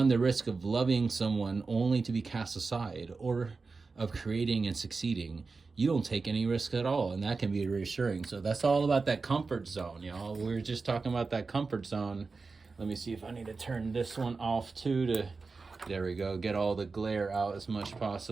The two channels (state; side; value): quieter; left; 4.3 dB